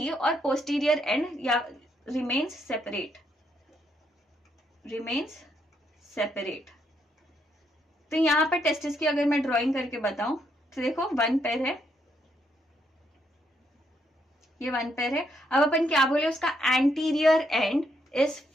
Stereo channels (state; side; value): normal; both; correlation 0.75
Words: or posterior end remains separate. तो यहाँ पर टेस्टिस की अगर मैं ड्राइंग करके बताऊं तो देखो 1 पेयर है, ये 1 पेयर है. अब अपन क्या बोले, उसका एंटीरियर एंड इज